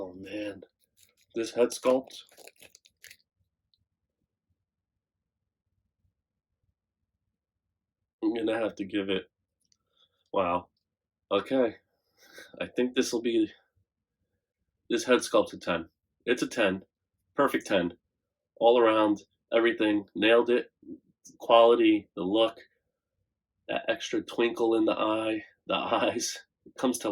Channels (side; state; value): both; identical; correlation 1.00